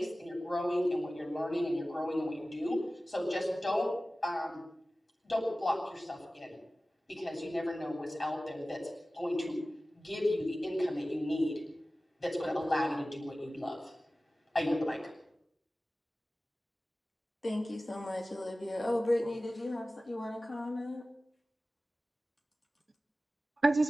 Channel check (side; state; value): both; normal; correlation 0.96